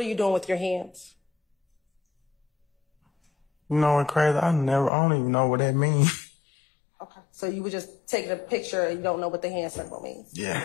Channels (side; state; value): right; drops out; at 4.9 s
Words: you doing with your hands? You know what's crazy? I don't even know what that means. Okay. So you were just taking a picture and you don't know what the hand symbol means? Yeah,